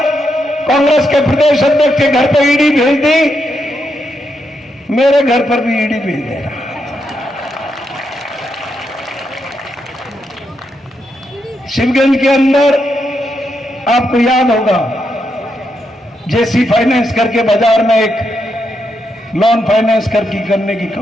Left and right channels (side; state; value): both; normal; correlation 0.82